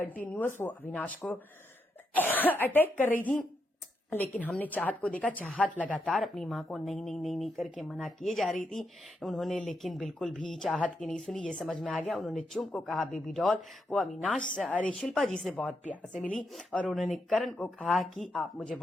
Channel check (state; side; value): normal; both; correlation 0.82